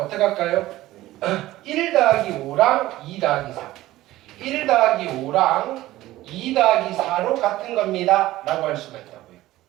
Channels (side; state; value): left; quieter; 16.3 dB